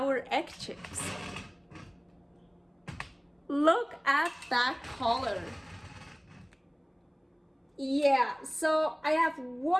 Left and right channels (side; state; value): both; identical; correlation 1.00